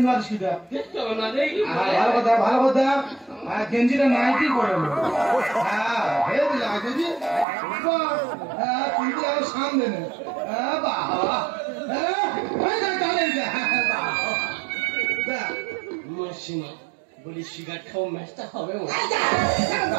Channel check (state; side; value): drops out; left; at 7.5 s